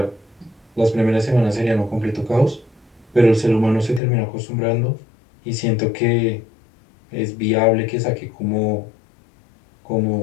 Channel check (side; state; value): right; drops out; at 4.0 s